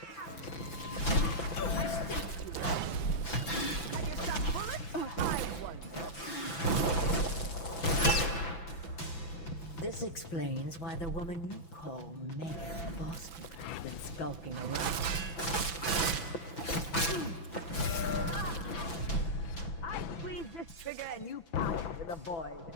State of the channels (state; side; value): late; right; 6.0 ms